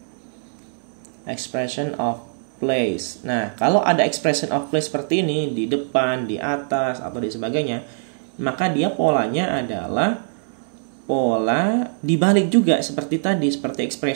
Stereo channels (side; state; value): left; silent; digital silence